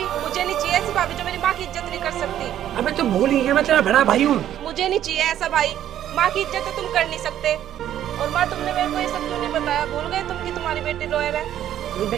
मुझे नहीं चाहिए, ऐसी भाभी जो मेरी माँ की इज्जत नहीं कर सकती। अबे तो भूल ही गया, मैं तेरा बड़ा भाई हूँ। मुझे नहीं चाहिए ऐसा भाई। माँ की इज्जत तो तुम कर नहीं सकते। और माँ तुमने मेरे को ये सब क्यों नहीं बताया? भूल गए तुम कि तुम्हारी बेटी रोए है?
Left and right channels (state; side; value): quieter; left; 11.3 dB